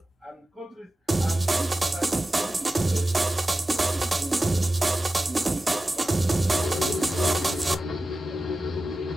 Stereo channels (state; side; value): normal; both; correlation 0.94